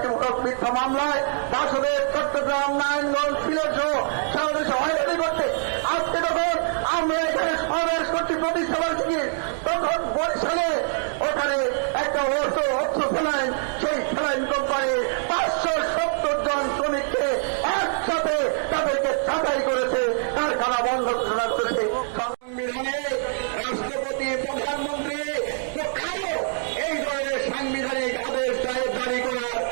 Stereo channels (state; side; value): silent; left; digital silence